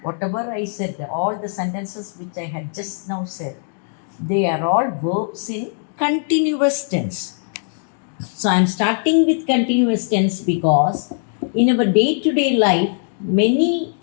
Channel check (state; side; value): silent; right; 62 dB below the other